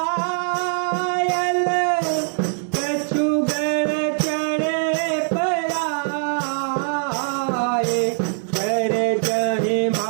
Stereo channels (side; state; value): left; silent; digital silence